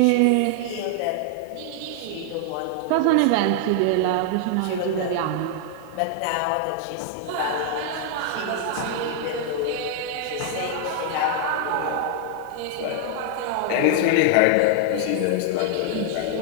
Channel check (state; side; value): different; both; correlation -0.01